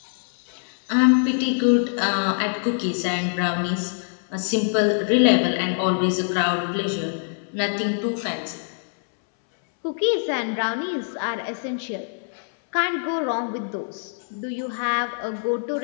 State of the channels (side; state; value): right; silent; 63 dB below the other